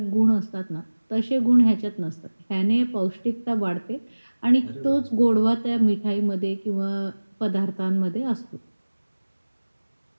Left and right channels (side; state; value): both; inverted; correlation -1.00